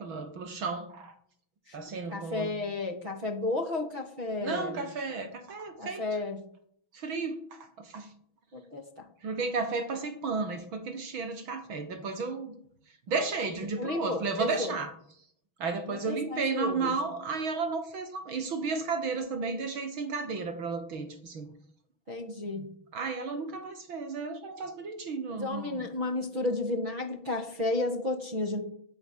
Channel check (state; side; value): late; left; 6.2 ms